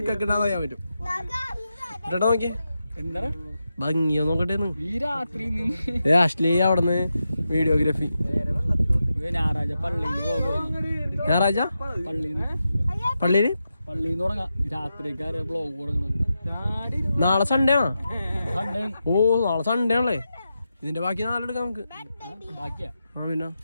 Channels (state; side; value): inverted; both; correlation -0.89